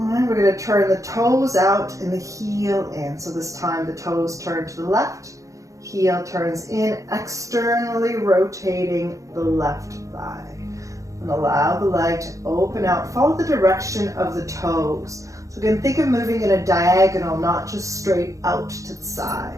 right, we're going to turn the toes out and the heel in. So this time the toes turn to the left, heel turns in, externally rotating the left thigh. And allow the leg to open out. Follow the direction of the toes. So again, think of moving in a diagonal, not just straight out to the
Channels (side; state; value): left; late; 0.16 ms